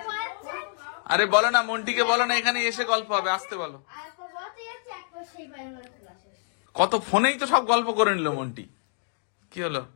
পাচ্ছে। আরে বলো না, মন্টিকে বলো না এখানে এসে গল্প হবে, আসতে বলো। আর কবতে যাচ্ছে একবার সেই পায়ের মধ্যে ক্লাসে। কত ফোনেই তো সব গল্প করে নিল মন্টি। কি হলো?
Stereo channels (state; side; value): silent; right; digital silence